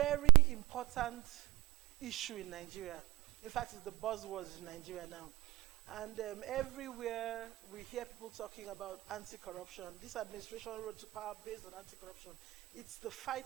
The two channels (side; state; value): left; quieter; 20.0 dB